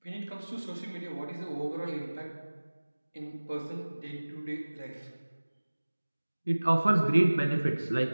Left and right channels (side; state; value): both; inverted; correlation -1.00